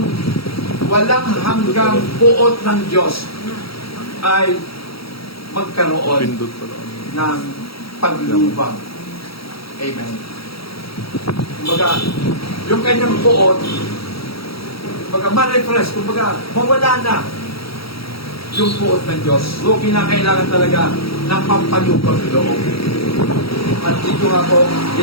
walang hanggang puot ng Diyos ay magkaroon ng paglubang. Amen. Kumbaga, yung kanyang puot, kumbaga, ma-refresh, kumbaga, mawala na yung puot ng Diyos. So, kinakailangan talaga ng pampalubang loob. At dito nga po,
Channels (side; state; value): right; late; 0.75 ms